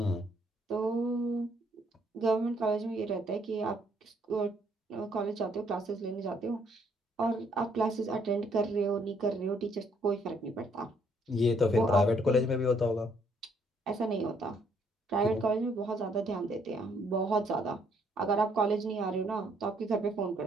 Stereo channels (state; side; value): normal; both; correlation 0.68